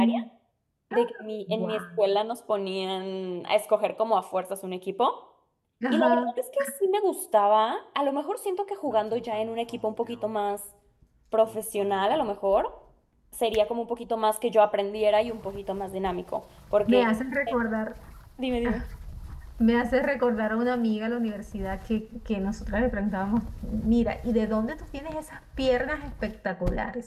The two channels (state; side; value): identical; both; correlation 1.00